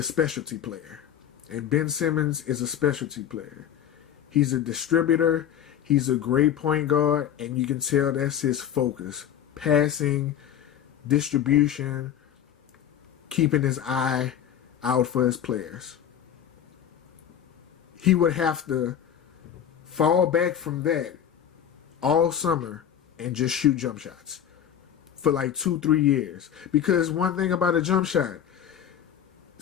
specialty player. And Ben Simmons is a specialty player. He's a distributor. He's a great point guard, and you can tell that's his focus. Passing, distribution, keeping his eye out for his players. He would have to fall back from that all summer and just shoot jump shots for like 2-3 years. Because one thing about a jump shot,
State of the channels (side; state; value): right; quieter; 9.6 dB